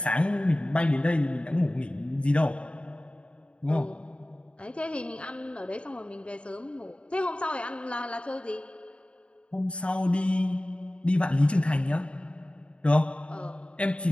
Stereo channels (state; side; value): late; right; 0.058 ms